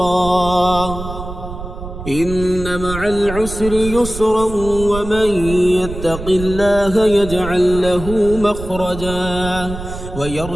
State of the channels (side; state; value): right; noise; rumble, 10 dB below the sound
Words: إن مع العسر يسرا، ومن يتق الله يجعل له مخرجا